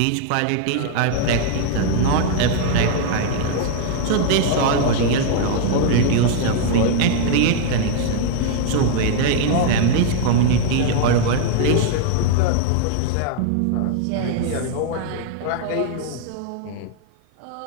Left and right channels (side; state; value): both; different; correlation 0.00